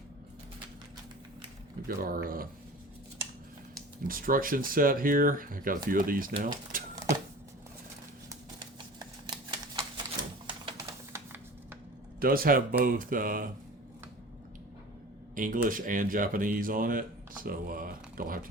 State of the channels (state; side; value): normal; both; correlation 0.39